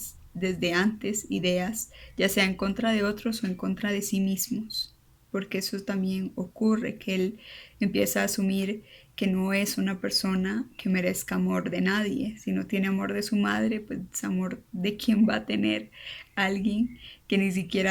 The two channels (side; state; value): both; identical; correlation 1.00